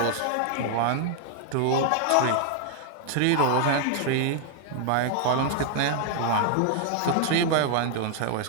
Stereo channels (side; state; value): both; different; correlation 0.00